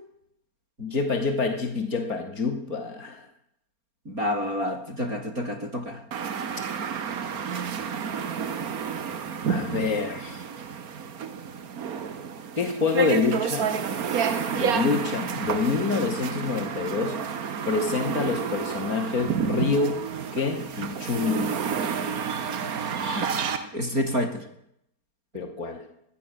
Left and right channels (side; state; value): left; late; 4.3 ms